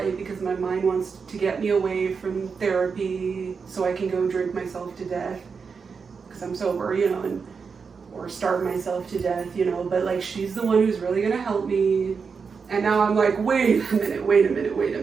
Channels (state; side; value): quieter; left; 5.5 dB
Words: because my mind wants to get me away from therapy so I can go drink myself to death because I'm sober, you know, or starve myself to death, you know, but, like, she's the one who's really going to help me. And now I'm like, wait a